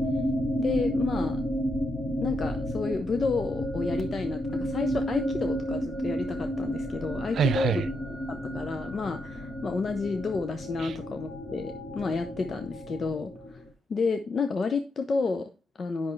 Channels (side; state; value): both; normal; correlation 0.81